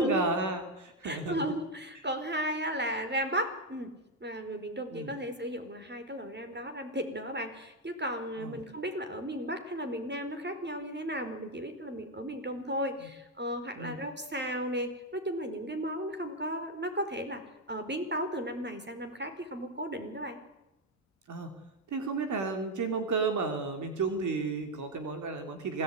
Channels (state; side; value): normal; both; correlation 0.06